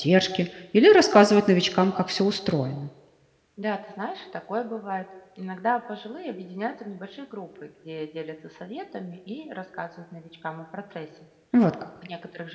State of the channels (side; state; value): both; identical; correlation 1.00